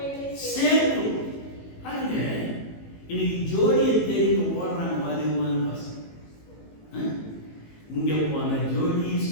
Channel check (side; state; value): right; late; 18 ms